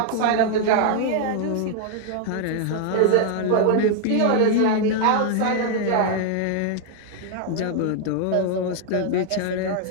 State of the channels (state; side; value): different; both; correlation 0.00